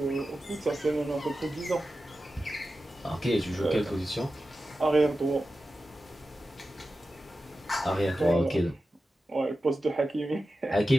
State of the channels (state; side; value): normal; both; correlation 0.93